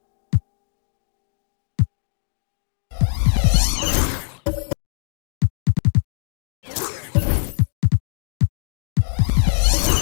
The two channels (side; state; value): right; silent; digital silence